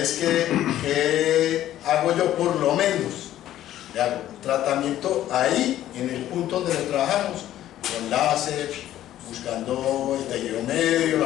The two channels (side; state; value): right; quieter; 12.8 dB